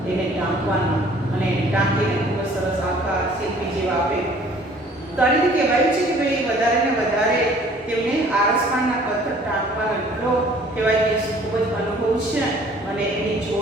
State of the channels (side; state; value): both; normal; correlation 0.54